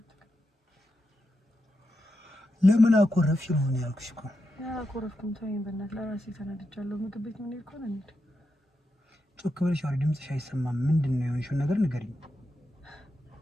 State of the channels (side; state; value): both; normal; correlation 0.87